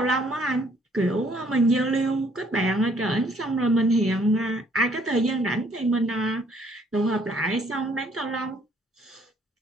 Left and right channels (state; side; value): normal; both; correlation 0.64